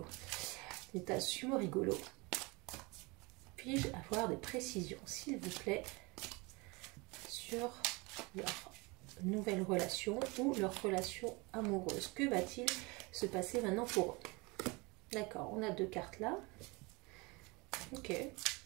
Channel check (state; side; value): quieter; left; 26.4 dB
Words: Le tas sumo rigolo. Puis-je avoir des précisions, s'il vous plaît, sur leur nouvelle relation ou leur relation amoureuse? Que va-t-il se passer maintenant pour eux? D'accord, on a deux cartes là. Ok.